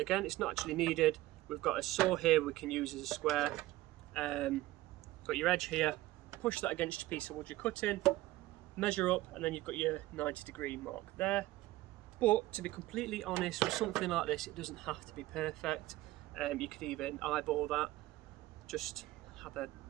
it's not actually needed. We've got a saw here we can use as a square. Got your edge here. Push that against your piece of wood you're cutting. Measure up, and then you've got your 90-degree mark there. But to be completely honest, with something like this, it doesn't have to be perfect. You could even eyeball that. Just have a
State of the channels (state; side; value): quieter; left; 17.2 dB